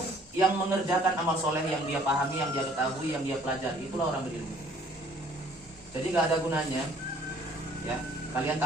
Yang mengerjakan amal soleh yang dia pahami, yang dia ketahui, yang dia pelajari. Itulah orang berilmu. Jadi gak ada gunanya, ya, kalian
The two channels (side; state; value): both; normal; correlation 0.57